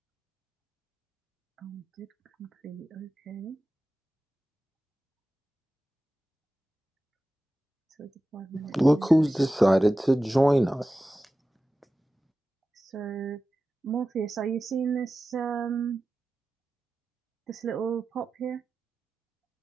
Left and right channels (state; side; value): normal; both; correlation 0.94